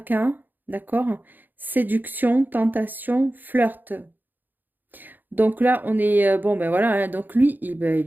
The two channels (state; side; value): late; left; 0.088 ms